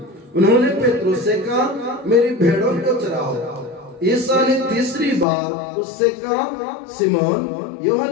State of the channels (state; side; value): drops out; right; at 5.2 s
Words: उन्होंने पेट्रोस से कहा, मेरी भेड़ों को चराओ। यीशु ने तीसरी बार उससे कहा, सिमोन